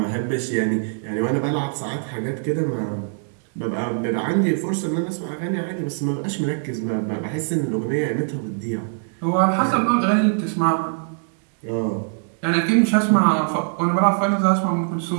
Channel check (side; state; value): left; silent; 64 dB below the other